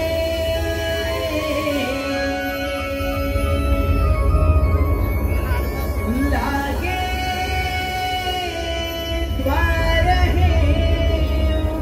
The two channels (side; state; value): both; identical; correlation 1.00